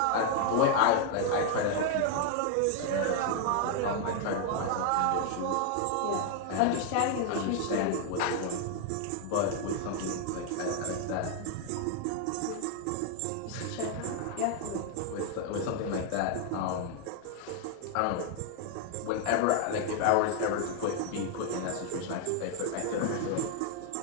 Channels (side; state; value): both; different; correlation 0.00